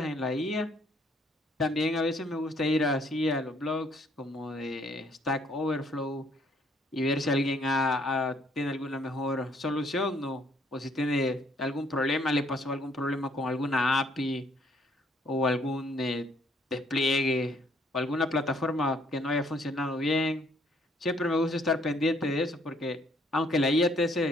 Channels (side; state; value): both; normal; correlation 0.65